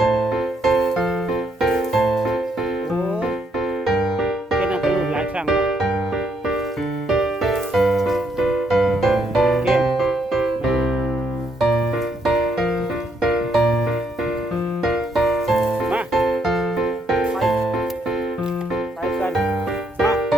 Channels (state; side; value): normal; both; correlation 0.75